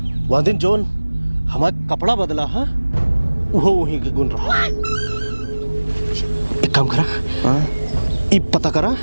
वह दिन जोन हमारा कपड़ा बदला है वो वहीं के गुण रहा। एक काम करा, ये पता करा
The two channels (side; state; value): both; inverted; correlation -1.00